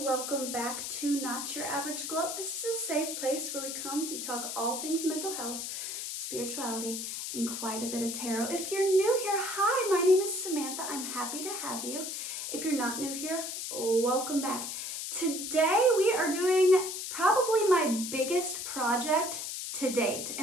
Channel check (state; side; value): noise; left; hiss, 5 dB below the sound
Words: welcome back to Not Your Average Glow. This is a safe place where we talk all things mental health, spirituality, and quite a bit of tarot. If you're new here, hi, my name is Samantha. I'm happy to have you. If you're not new here, welcome back. Today we are doing probably my biggest project to date,